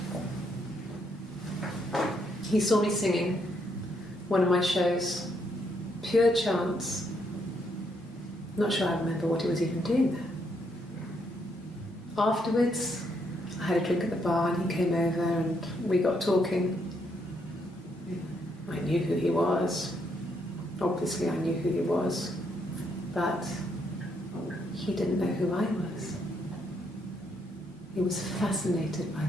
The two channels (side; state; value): both; normal; correlation 0.75